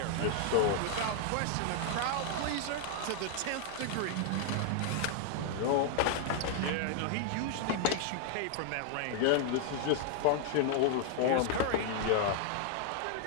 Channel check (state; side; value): different; both; correlation 0.00